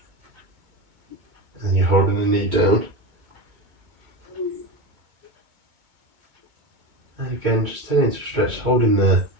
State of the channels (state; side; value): late; left; 2.2 ms